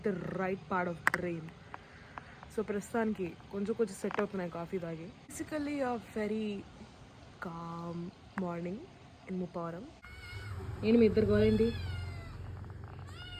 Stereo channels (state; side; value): identical; both; correlation 1.00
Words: the right part of brain. So ప్రస్తుతానికి కొంచెం సెట్ అవుతున్నాయి కాఫీ తాగి. Basically a very calm morning in Muppavaram. ఏంటి మీ ఇద్దరు గోలేంటి,